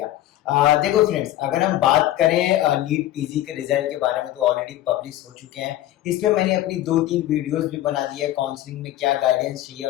देखो friends, अगर हम बात करें नीट पीजी के रिजल्ट के बारे में तो ऑलरेडी पब्लिश हो चुके हैं। इस पे मैंने अपनी 2-3 वीडियोस भी बना दी है। काउंसलिंग में क्या गाइडेंस चाहिए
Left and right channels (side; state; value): right; quieter; 14.0 dB